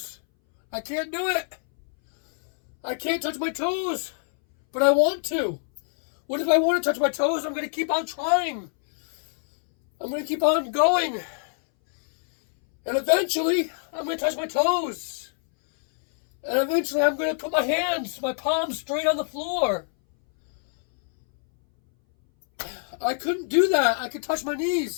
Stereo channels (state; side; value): silent; right; 61 dB below the other